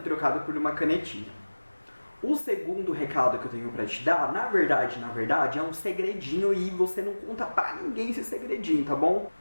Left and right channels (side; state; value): both; inverted; correlation -1.00